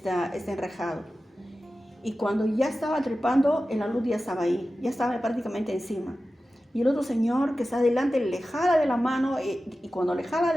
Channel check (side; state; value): both; normal; correlation 0.94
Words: enrejado. Y cuando ya estaba trepando, el alud ya estaba ahí, ya estaba prácticamente encima. Y el otro señor que está adelante le jala de la mano, y cuando le jala